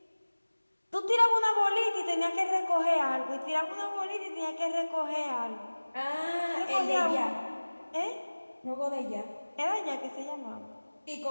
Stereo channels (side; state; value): both; inverted; correlation -1.00